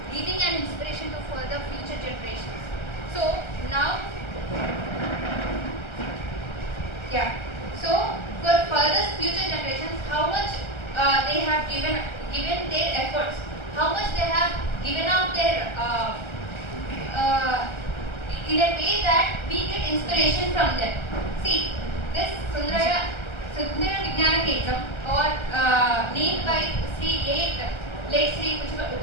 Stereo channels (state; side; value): late; right; 1.3 ms